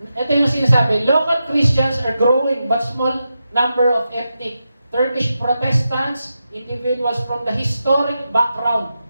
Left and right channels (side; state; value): both; inverted; correlation -0.88